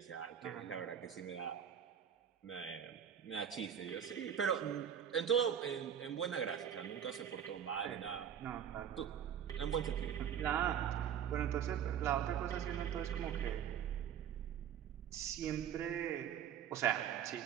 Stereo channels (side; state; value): left; quieter; 8.9 dB